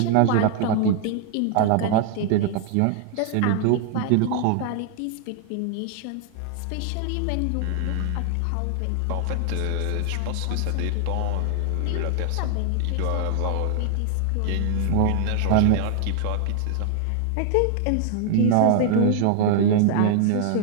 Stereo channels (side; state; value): both; different; correlation 0.00